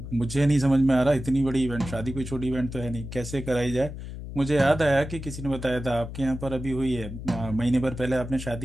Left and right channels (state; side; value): noise; left; hum, 9 dB below the sound